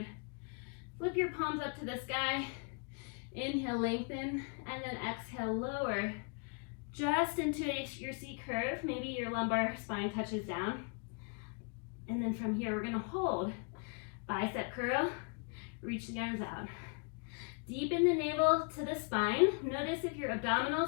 Flip your palms up to the sky. Inhale, lengthen, and then exhale, lower. Just into your C curve. Maybe your lumbar spine touches down. And then from here, we're gonna hold. Bicep curl, reach the arms out. Deepen the navel to the spine. Notice if your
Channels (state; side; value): quieter; right; 38.0 dB